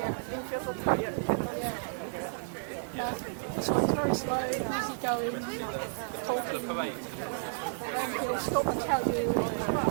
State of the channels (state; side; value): silent; left; digital silence